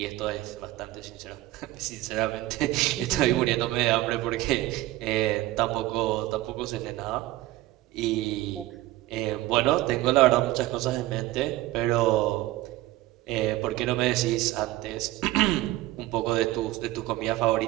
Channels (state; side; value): quieter; left; 17.0 dB